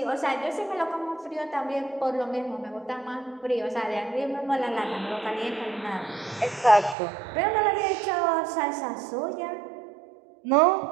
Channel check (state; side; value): drops out; left; at 7.0 s